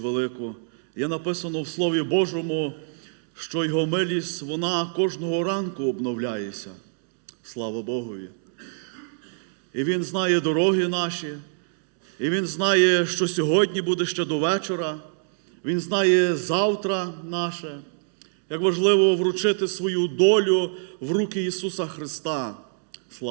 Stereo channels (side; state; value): left; silent; digital silence